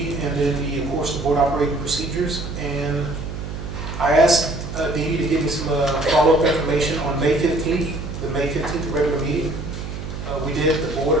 and then of course the board operating procedures. And I asked Dee to give me some follow-up information on May 15th, the May 15th regular meeting. We did, the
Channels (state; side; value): noise; right; hum, 7 dB below the sound